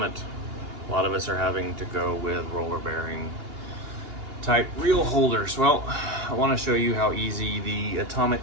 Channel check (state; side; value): late; left; 2.8 ms